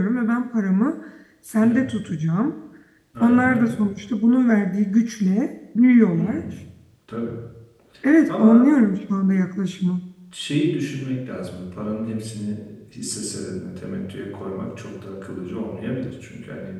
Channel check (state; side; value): identical; both; correlation 1.00